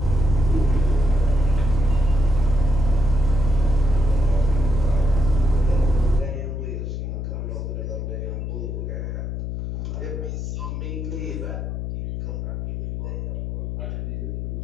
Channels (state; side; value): noise; left; hum, 4 dB below the sound